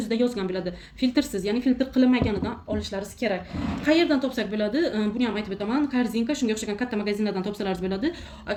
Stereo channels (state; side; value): identical; both; correlation 1.00